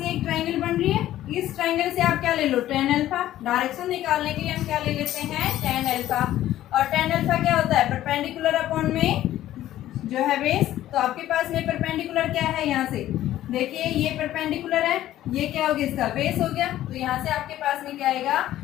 ये एक ट्रायंगल बन रही है, इस ट्रायंगल से आप क्या ले लो, tan अल्फा। डायरेक्शन निकालने के लिए हम क्या ले लेते हैं, tan अल्फा, और tan अल्फा क्या होता है, परपेंडिकुलर अपॉन में जो है बेस। तो आपके पास में परपेंडिकुलर क्या है, यहाँ से देखिए ये परपेंडिकुलर है, ये क्या हो गया, इसका बेस हो गया, तो यहाँ से आपके पास में क्या आएगा,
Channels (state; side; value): quieter; right; 13.5 dB